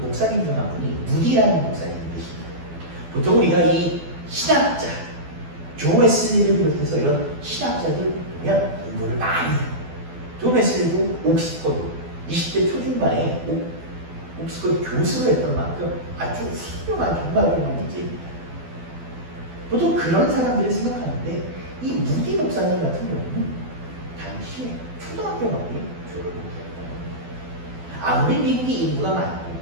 목사님 중 한 분이 무디라는 목사님이십니다. 보통 우리가 이 신학자 존 웨슬리를 비롯해서 이런 신학자들 보면 공부를 많이 해요. 존 웨슬리도 옥스퍼드 20대 초중반에 옥스퍼드 교수를 했던 만큼 아주 훌륭한 정말 훌륭한 인재입니다. 보통 그런 사람들을 생각하는데 이 무디 목사님 같은 경우는 당시에 초등학교밖에 졸업을 못했다. 아무리 미국이 인구가 많고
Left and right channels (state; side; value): late; left; 12 ms